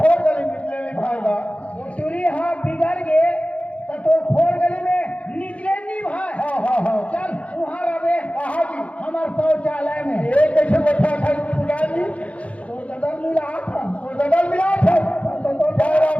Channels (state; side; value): late; right; 0.064 ms